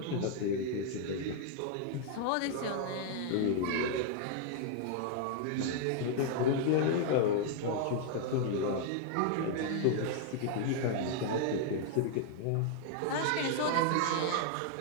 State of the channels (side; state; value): both; different; correlation -0.01